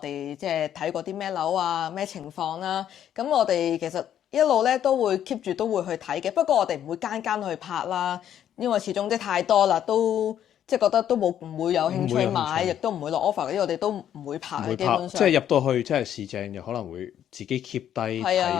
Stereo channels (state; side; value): quieter; right; 10.3 dB